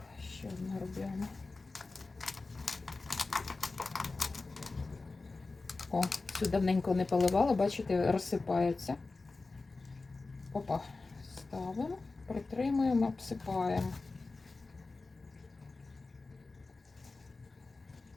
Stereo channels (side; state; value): right; quieter; 3.6 dB